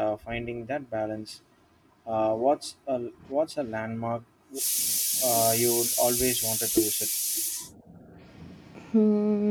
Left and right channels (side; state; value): both; identical; correlation 1.00